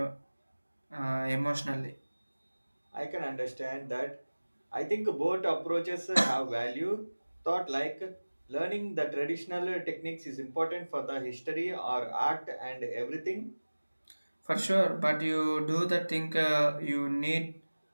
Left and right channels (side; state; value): both; inverted; correlation -1.00